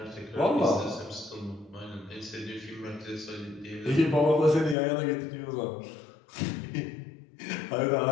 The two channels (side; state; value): right; drops out; at 4.8 s